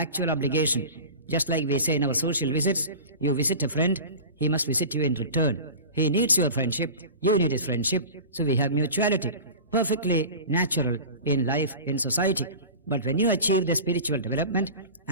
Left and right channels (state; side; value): inverted; both; correlation -0.34